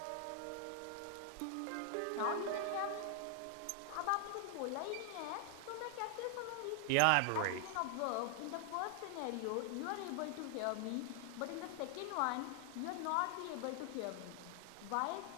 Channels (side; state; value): both; different; correlation 0.00